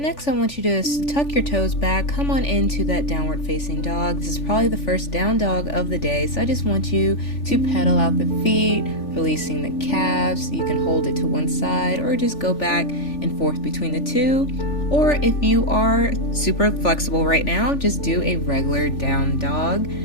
I want you to tuck your toes back, come on into that downward facing dog. This is probably the first down dog of the day, so I just want you to pedal out the feet, releasing the calves. You can hold it to one side or just go back and forth between the two. Or if you are super flexible right now, just do a regular down dog.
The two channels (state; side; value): late; right; 3.4 ms